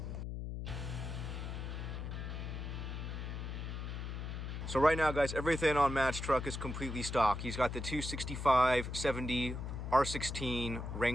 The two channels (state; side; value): noise; left; hum, 5 dB below the sound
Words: So right now, guys, everything on Matt's truck is completely stock. He's got the 265/70 R16